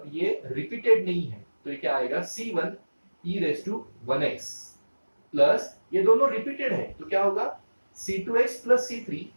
ये रिपीटेड नहीं है, तो ये क्या आएगा c1 e raise to 1x, plus ये दोनों रिपीटेड है तो क्या होगा c2x plus c3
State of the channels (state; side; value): inverted; both; correlation -1.00